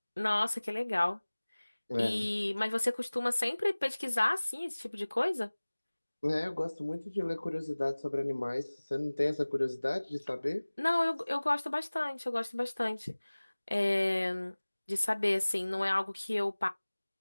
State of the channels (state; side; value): inverted; both; correlation -1.00